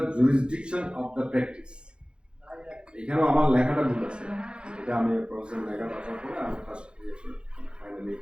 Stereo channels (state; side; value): late; left; 0.053 ms